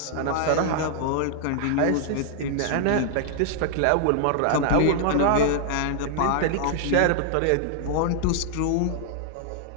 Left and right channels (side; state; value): both; different; correlation -0.01